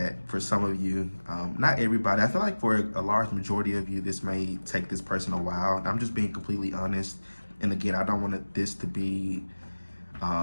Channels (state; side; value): inverted; both; correlation -1.00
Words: for some of you. Not everybody. I feel like for a large majority of you, this may take this person a while. I'm just being completely honest. And again, I don't want this to be